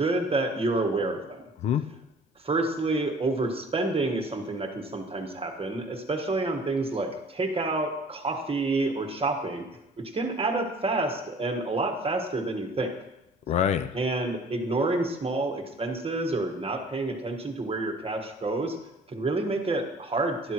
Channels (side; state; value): both; normal; correlation 0.49